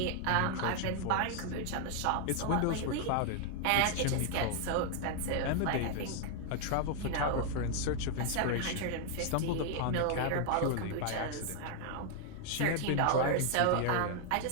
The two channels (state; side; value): different; both; correlation 0.00